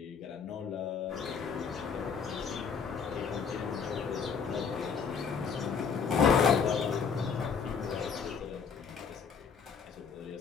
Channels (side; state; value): right; quieter; 6.2 dB